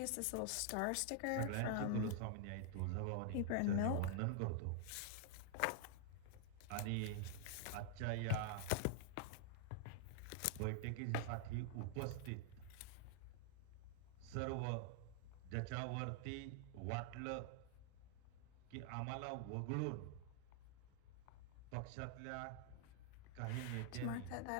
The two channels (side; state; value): both; different; correlation 0.00